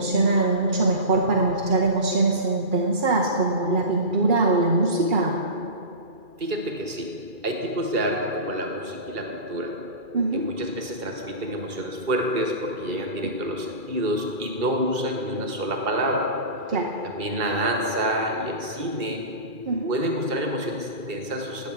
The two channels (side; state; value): left; late; 2.3 ms